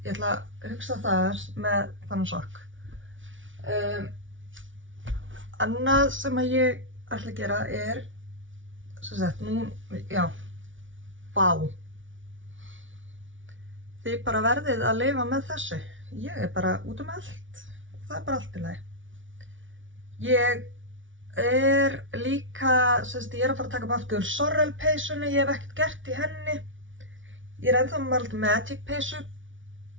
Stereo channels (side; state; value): left; late; 0.56 ms